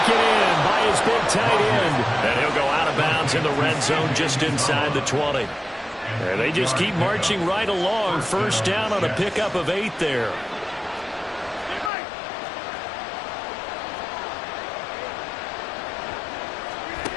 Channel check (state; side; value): drops out; right; at 11.9 s